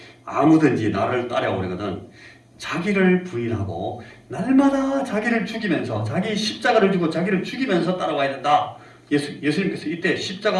아무든지 나를 따라오려거든 자기를 부인하고 날마다 자기를 죽이면서 자기 십자가를 지고 자기를 죽이면서 따라와야 된다. 예수님께서 이때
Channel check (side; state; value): both; identical; correlation 1.00